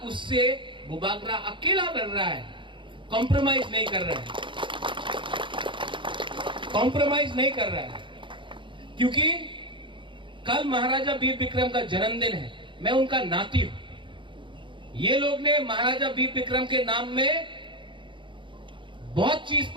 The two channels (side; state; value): left; late; 0.24 ms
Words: उससे बुबागरा अकेला लड़ रहा है, कॉम्प्रोमाइज नहीं कर रहा है, कॉम्प्रोमाइज नहीं कर रहा है, क्योंकि कल महाराजा वीर विक्रम का जन्मदिन है, मैं उनका नाती हूं। ये लोग ने महाराजा वीर विक्रम के नाम में बहुत चीज